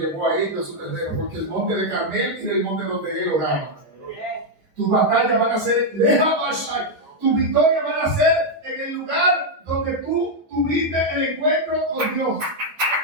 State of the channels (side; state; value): left; late; 12 ms